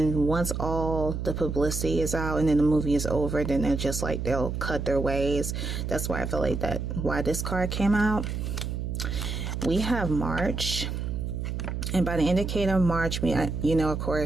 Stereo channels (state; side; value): noise; right; hum, 3 dB below the sound